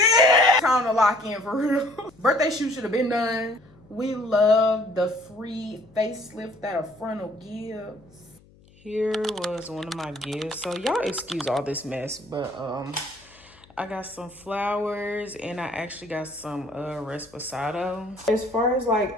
Time to lock in for real. Birthday shoot should have been done. We love the free facelift that a frontal gives. Here was one of my gifts. So y'all excuse all this mess, but I got some flowers and I actually got some Resposado. As far as like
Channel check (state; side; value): noise; left; hum, 27 dB below the sound